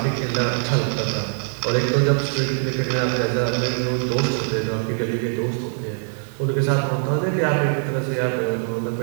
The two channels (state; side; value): silent; left; 64 dB below the other